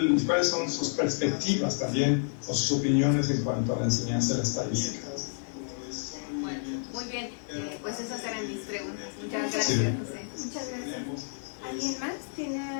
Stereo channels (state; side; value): silent; right; digital silence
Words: ¿Cuáles son sus perspectivas también, o sus opiniones en cuanto a la enseñanza de la estadística? Bueno, muy bien, pues esas eran mis preguntas. Muchas gracias, José. Muchas gracias. ¿Alguien más tiene